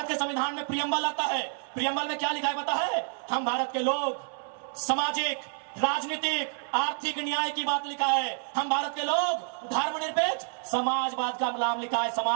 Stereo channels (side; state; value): left; silent; 59 dB below the other